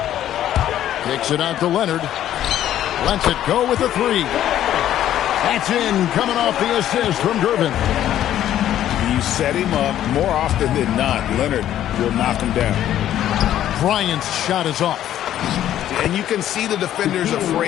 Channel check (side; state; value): right; quieter; 11.7 dB